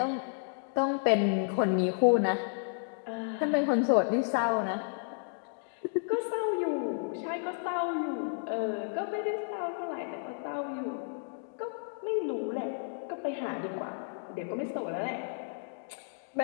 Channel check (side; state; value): right; silent; digital silence